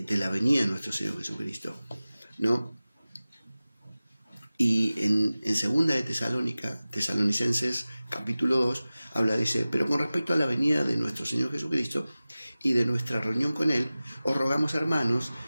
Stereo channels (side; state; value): both; inverted; correlation -0.97